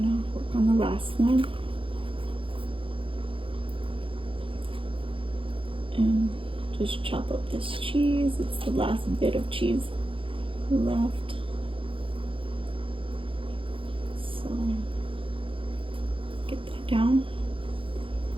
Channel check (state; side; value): late; left; 0.26 ms